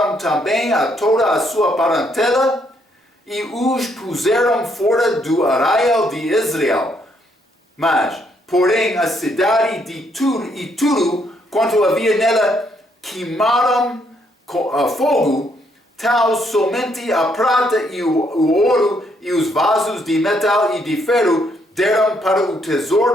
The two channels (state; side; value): normal; both; correlation 0.72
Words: também a toda a sua parentela, e os puseram fora do arraial de Israel. Mas, porém, a cidade de tudo quanto havia nela queimaram a fogo, tal somente a prata e o ouro e os vasos de metal e de ferro deram para o